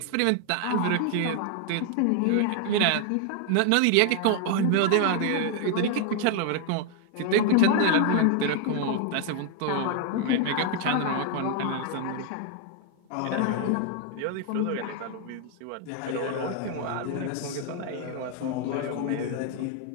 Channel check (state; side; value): different; both; correlation 0.00